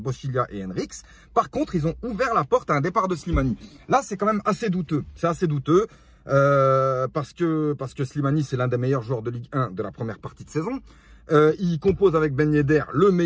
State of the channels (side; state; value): both; identical; correlation 1.00